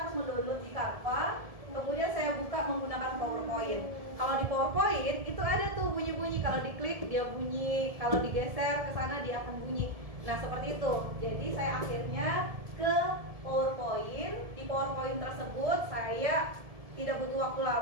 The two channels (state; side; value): late; left; 1.7 ms